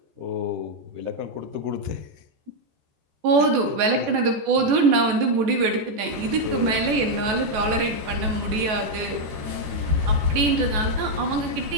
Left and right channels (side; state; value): left; late; 14 ms